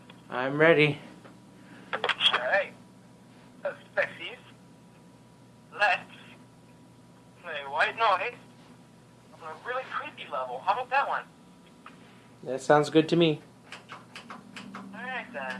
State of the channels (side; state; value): both; identical; correlation 1.00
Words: I'm ready. Alright. So, sexies, let's play White Noise on a really creepy level. How about that one? That sounds good to me. Alright